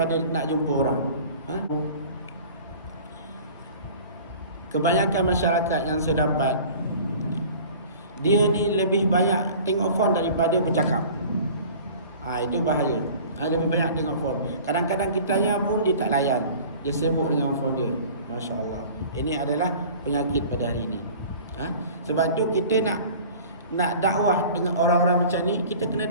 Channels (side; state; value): both; inverted; correlation -0.44